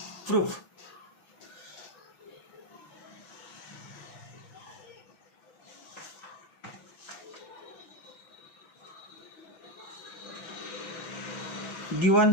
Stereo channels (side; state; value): right; late; 6.0 ms